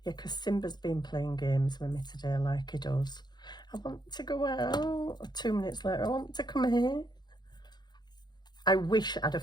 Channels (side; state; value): right; late; 0.21 ms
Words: Yeah, because Simba's been playing games with me today like he does. I want to go out. 2 minutes later, I want to come here. I wish I'd have